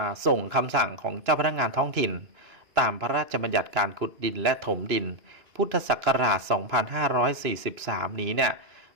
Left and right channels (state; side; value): late; left; 2.9 ms